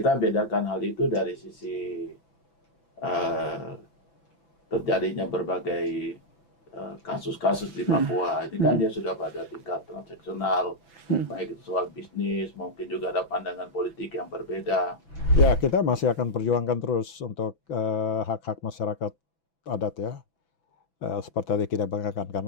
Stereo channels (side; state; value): right; late; 6.0 ms